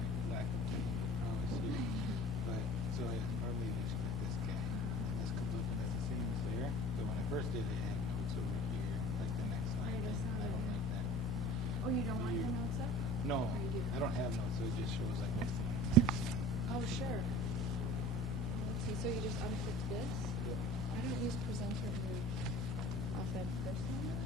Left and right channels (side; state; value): both; normal; correlation 0.42